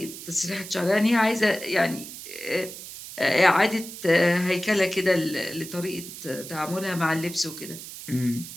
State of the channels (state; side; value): noise; right; hiss, 12 dB below the sound